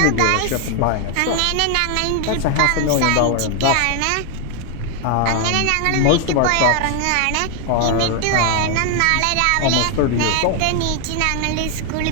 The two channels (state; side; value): different; both; correlation 0.01